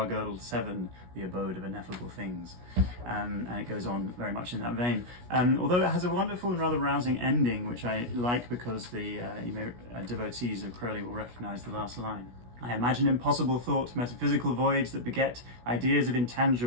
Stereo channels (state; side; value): late; left; 17 ms